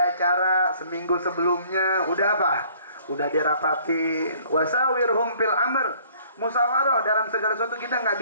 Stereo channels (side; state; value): both; inverted; correlation -0.57